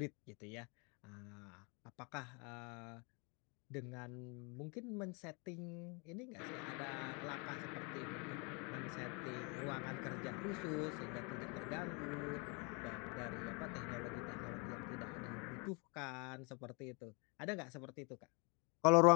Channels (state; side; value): quieter; right; 32.2 dB